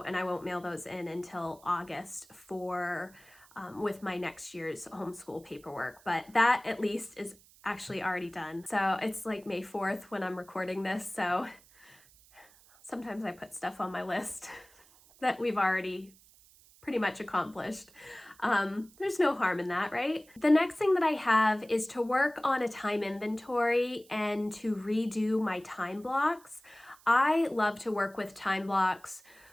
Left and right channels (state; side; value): noise; right; hiss, 26 dB below the sound